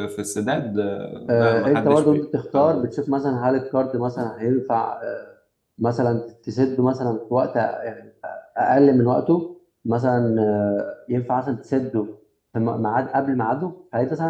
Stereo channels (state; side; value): identical; both; correlation 1.00